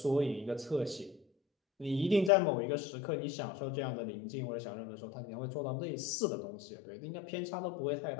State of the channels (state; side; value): drops out; right; at 2.3 s